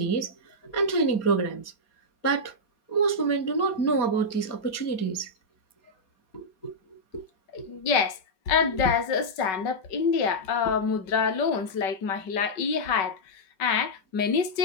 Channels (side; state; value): right; late; 5.3 ms